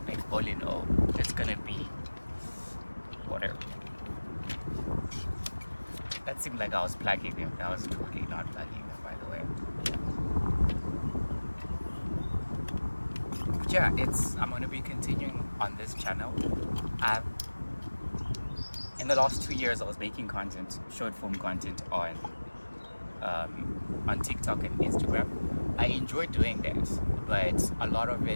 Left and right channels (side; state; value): both; inverted; correlation -1.00